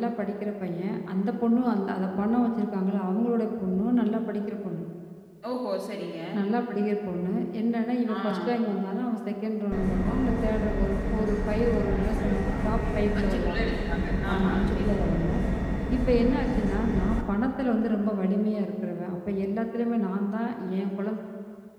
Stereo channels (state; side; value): identical; both; correlation 1.00